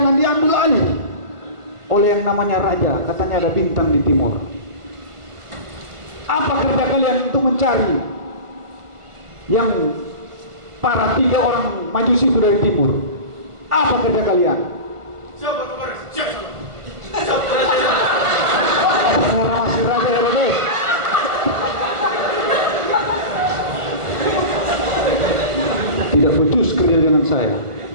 diambil alih oleh yang namanya raja. Katanya ada bintang di timur. Apa kerja kalian untuk mencari yang para 3 orang Majusi itu dari timur? Apa kerja kalian? Siapa kemarin? Siapa? Saya masih raja Herodes. Tidak becus kerja dengan saya.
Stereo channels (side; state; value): left; late; 1.4 ms